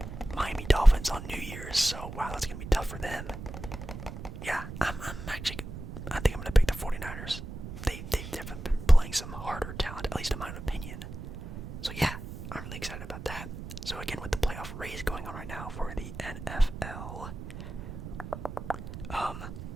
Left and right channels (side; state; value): right; noise; rumble, 9 dB below the sound